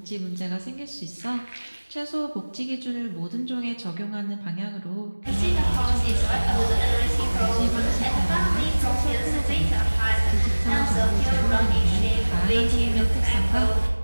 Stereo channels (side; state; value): both; inverted; correlation -1.00